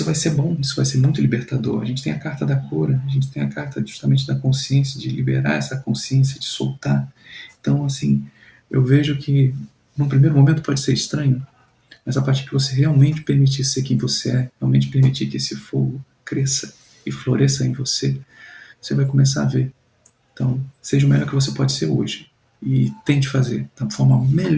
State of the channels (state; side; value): identical; both; correlation 1.00